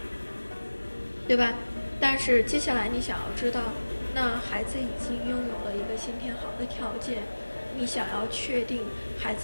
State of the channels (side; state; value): both; inverted; correlation -1.00